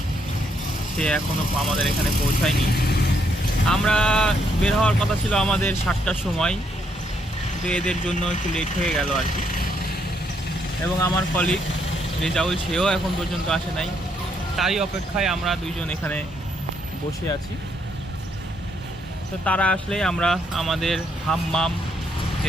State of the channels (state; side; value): normal; both; correlation 0.74